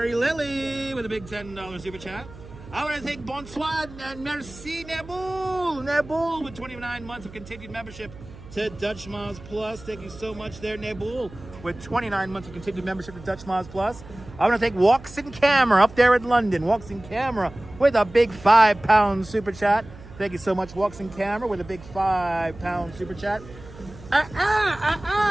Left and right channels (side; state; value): right; noise; hum, 17 dB below the sound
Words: Lily, with a big $10 super chat. I want to thank Bonsoir and Merci Neboul with 29 months of continued membership to Dutch Moz Plus. Thank you so much there, Neboul, with 29 months of continued membership to Dutch Moz Plus. I want to thank Walks in Camera up there in London. Walks in Camera with a big £5 super chat. Thank you so much, Walks in Camera, with a big £5 super chat.